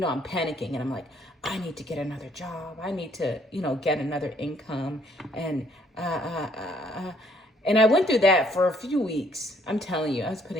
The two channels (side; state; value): both; normal; correlation 0.65